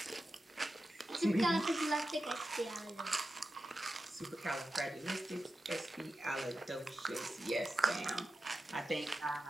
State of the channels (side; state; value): both; normal; correlation 0.91